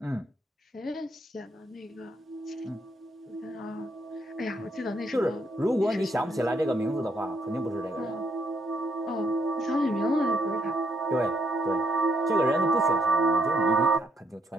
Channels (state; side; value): normal; both; correlation 0.73